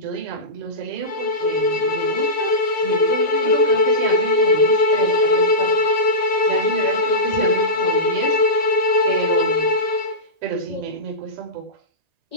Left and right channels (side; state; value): left; late; 1.9 ms